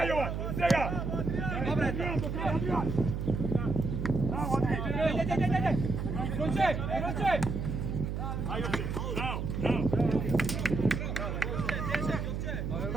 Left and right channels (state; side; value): noise; right; hum, 3 dB below the sound